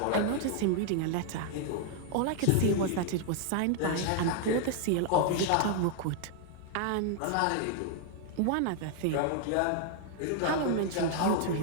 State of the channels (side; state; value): both; different; correlation 0.00